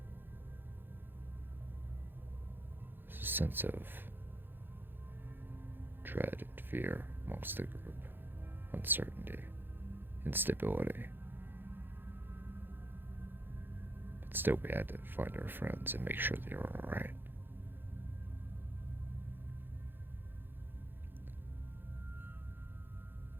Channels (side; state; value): left; late; 0.099 ms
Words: There's a sense of dread and fear amongst the group, uncertainty, instability. But still, we had to find our friends and make sure they were alright.